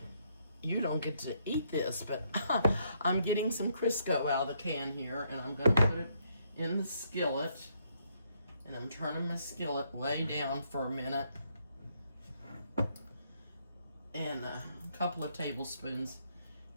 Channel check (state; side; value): inverted; both; correlation -0.73